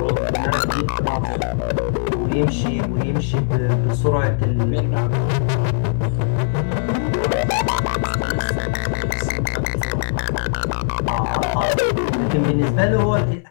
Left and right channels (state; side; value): silent; right; 66 dB below the other